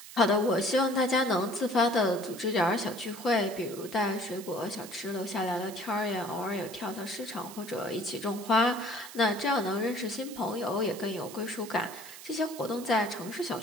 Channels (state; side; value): noise; right; hiss, 15 dB below the sound